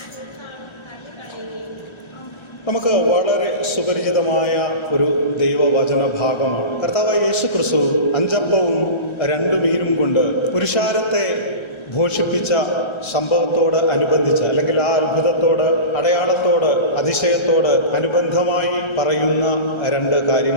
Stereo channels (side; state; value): right; late; 1.3 ms